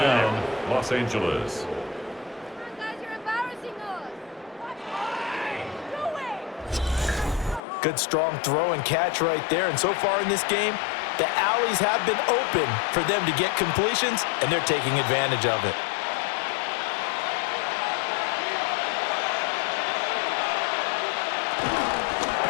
down, Los Angeles. Good strong throw and catch right there. And so far in this game, the alleys have been open for them to get completions, and they're taking advantage of it.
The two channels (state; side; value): drops out; right; at 7.6 s